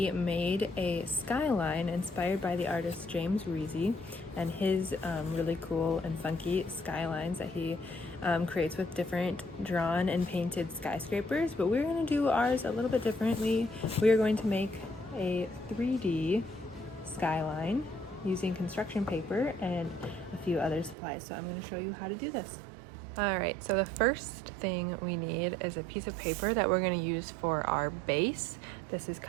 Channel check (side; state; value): left; drops out; at 21.0 s